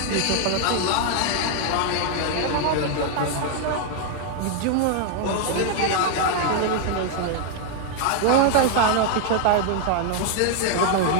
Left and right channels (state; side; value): different; both; correlation 0.00